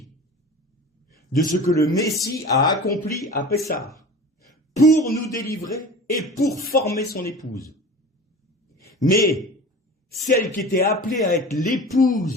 de ce que le Messie a accompli à Pessah pour nous délivrer et pour former son épouse. Mais celle qui était appelée à être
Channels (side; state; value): both; normal; correlation 0.37